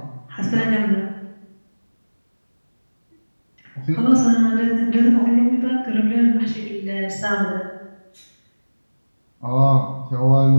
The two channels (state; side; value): inverted; both; correlation -1.00